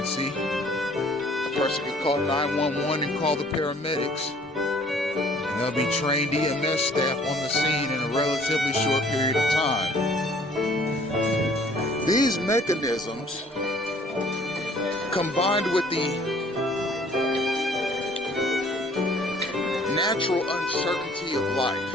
a person can call 911 and call the paramedics, and there'll be trained EMS staff on the scene in a relatively short period of time. These mechanisms, combined with the natural uncertainty of life,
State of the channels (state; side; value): normal; both; correlation 0.56